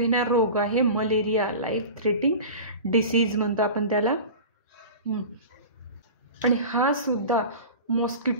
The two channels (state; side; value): inverted; both; correlation -0.34